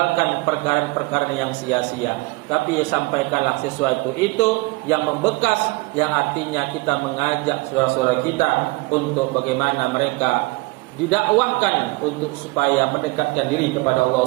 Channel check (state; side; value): quieter; left; 24.2 dB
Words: perkara-perkara yang sia-sia. Tapi sampaikanlah sesuatu itu yang membekas, yang artinya kita mengajak saudara-saudara kita untuk bagaimana mereka didakwahkan untuk supaya mendekatkan diri kepada Allah